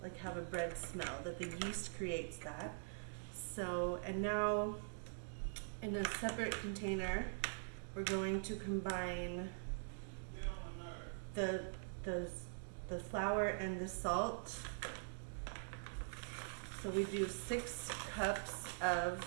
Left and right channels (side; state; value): left; silent; digital silence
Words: have a bread smell, that the yeast creates that. So, and now in a separate container, we're going to combine the flour and the salt. So we do 6 cups of